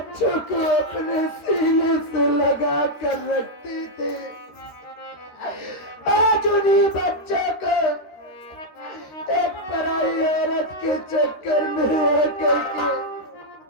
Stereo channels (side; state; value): right; late; 13 ms